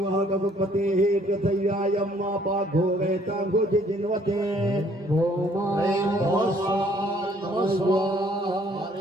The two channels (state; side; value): normal; both; correlation 0.62